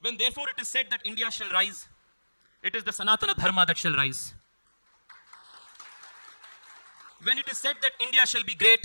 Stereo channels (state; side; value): inverted; both; correlation -1.00